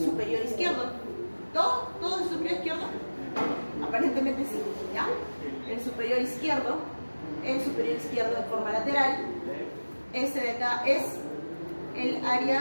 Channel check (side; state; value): both; inverted; correlation -1.00